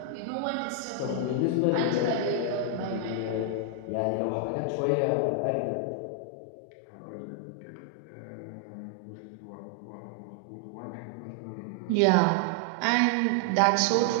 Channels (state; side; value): different; both; correlation 0.00